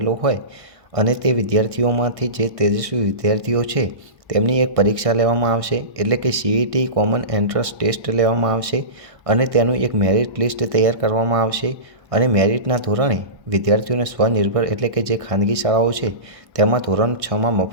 હોય અને તે વિદ્યાર્થીઓમાંથી જે તેજસ્વી વિદ્યાર્થીઓ છે તેમની એક પરીક્ષા લેવામાં આવશે, એટલે કે CET કોમન એન્ટ્રન્સ ટેસ્ટ લેવામાં આવશે અને તેનું એક મેરિટ લિસ્ટ તૈયાર કરવામાં આવશે અને મેરિટના ધોરણે વિદ્યાર્થીઓને સ્વનિર્ભર એટલે કે જે ખાનગી શાળાઓ છે તેમાં ધોરણ 6માં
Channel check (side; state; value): left; late; 1.6 ms